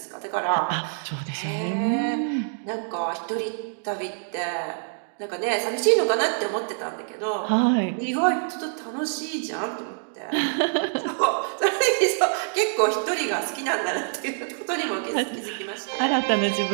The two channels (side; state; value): left; silent; digital silence